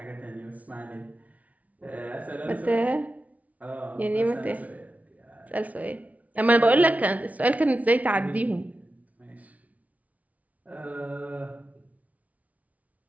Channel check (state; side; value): late; left; 0.071 ms